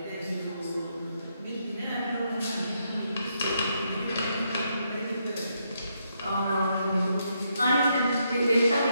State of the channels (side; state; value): both; inverted; correlation -0.78